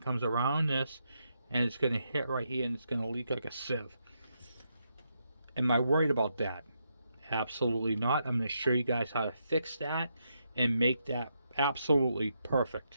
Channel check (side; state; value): both; inverted; correlation -0.81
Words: comes around this, and it's going to hit right here, and it's going to leak like a sieve. Am I worried about that? Absolutely not. I'm going to show you guys how to fix that and make that absolutely